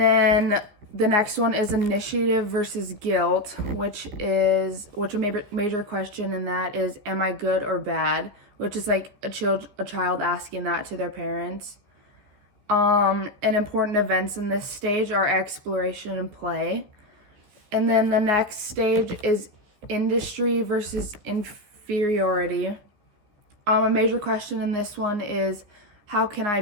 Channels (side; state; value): left; late; 15 ms